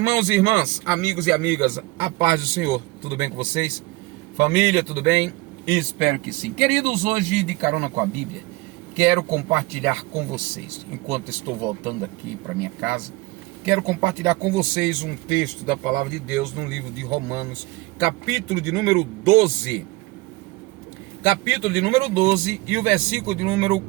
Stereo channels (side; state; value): left; quieter; 22.0 dB